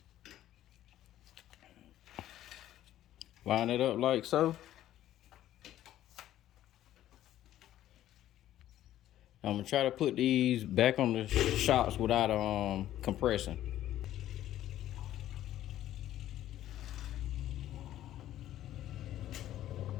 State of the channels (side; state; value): right; quieter; 12.9 dB